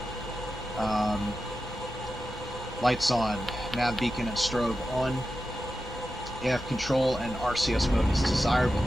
Lights on. Nav beacon and strobe on. AF control and RCS mode is desired. We'll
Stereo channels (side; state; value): both; normal; correlation 0.92